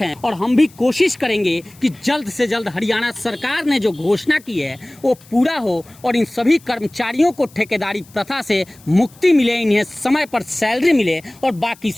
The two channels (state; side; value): noise; left; hiss, 26 dB below the sound